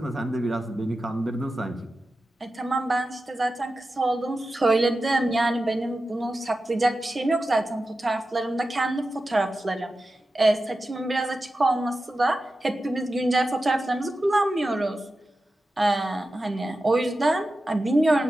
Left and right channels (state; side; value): normal; both; correlation 0.93